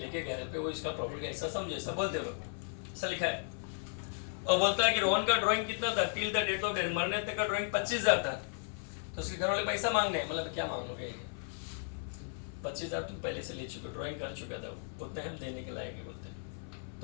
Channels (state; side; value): silent; right; 54 dB below the other